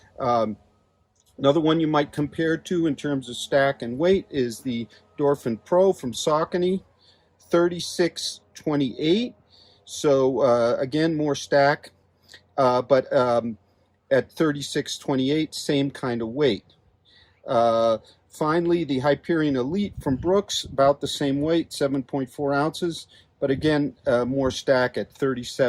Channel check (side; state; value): both; identical; correlation 1.00